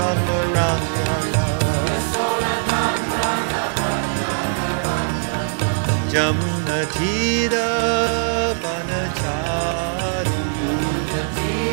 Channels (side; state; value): left; silent; digital silence